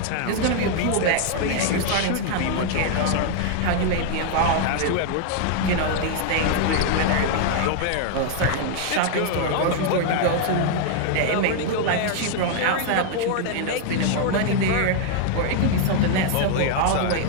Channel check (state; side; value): different; both; correlation 0.00